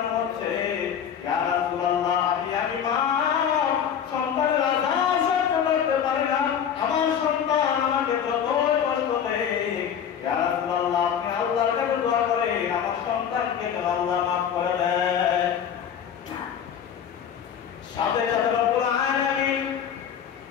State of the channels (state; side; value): quieter; right; 8.4 dB